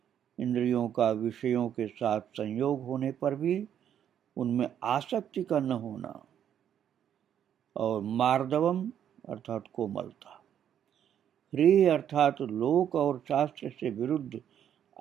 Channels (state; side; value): quieter; left; 9.5 dB